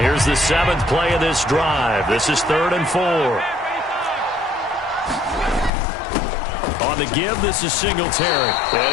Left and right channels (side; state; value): right; drops out; at 5.7 s